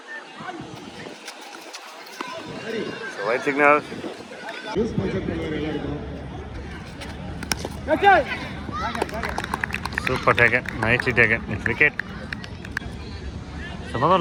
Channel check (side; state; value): both; identical; correlation 1.00